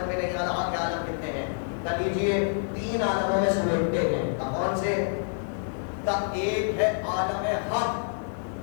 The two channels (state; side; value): silent; right; 60 dB below the other